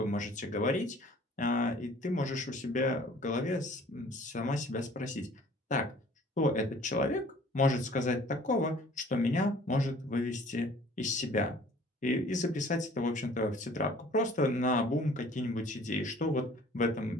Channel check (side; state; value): both; normal; correlation 0.52